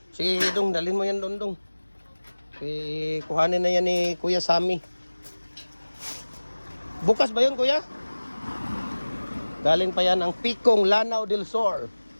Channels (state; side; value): inverted; both; correlation -1.00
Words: Sige, dong, dalhin mo yan doon. Kuhanin na yan ni Kuya Sammy. Bukas ba yun Kuya? Galing pa yan ang Pikong, Lanao del Sur.